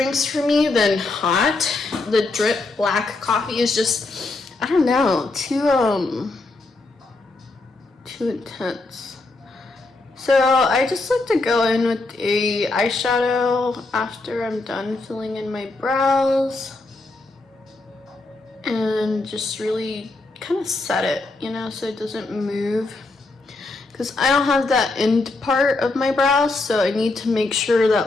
for me than hot. The drip black coffee is just, I don't know, too intense. So I just like to go in with a eyeshadow after I'm done filling in my brows and just really kind of set it, you know, so it doesn't move, because I don't have that end part of my brows, so I need to make sure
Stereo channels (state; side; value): quieter; right; 3.3 dB